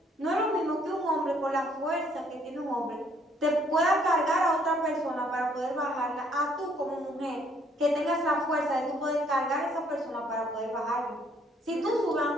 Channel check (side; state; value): both; normal; correlation 0.65